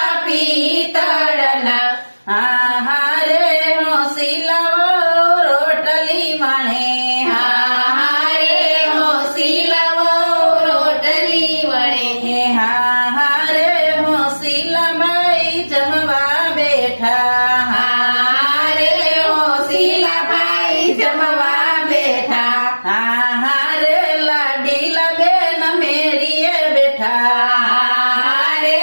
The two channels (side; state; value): both; inverted; correlation -1.00